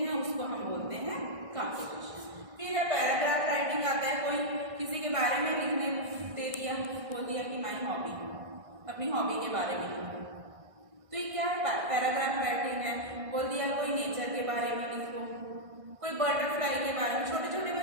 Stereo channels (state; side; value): late; left; 1.6 ms